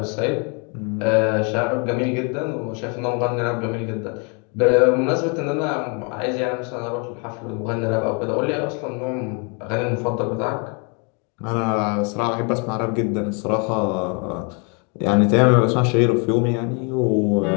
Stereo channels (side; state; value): right; quieter; 35.5 dB